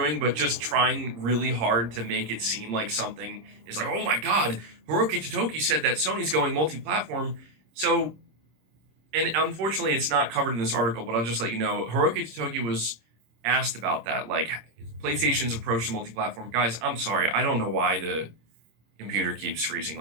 but just trying really hard to make it seem like something is like, oh my God, Hiroki Totoki said that Sony's going multi-platform. So, and unfortunately it's not covered in this article, but I'll just let you know, Hiroki Totoki was asked about that, like PlayStation's approach to multi-platform. Guys, I'm sorry, I don't know why the computer keeps freezing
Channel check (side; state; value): left; late; 26 ms